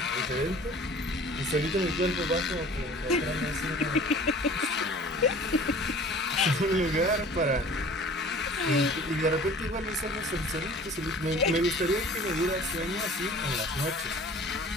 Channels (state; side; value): normal; both; correlation 0.46